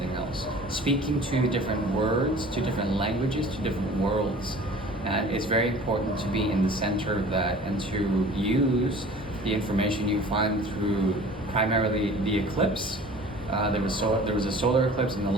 else. Speaking two different words, 2 different languages, 2 different worlds. And it's very important to be in the center of that and to use the information you find through primarily the eclipse. There was a solar eclipse in the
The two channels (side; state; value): both; normal; correlation 0.45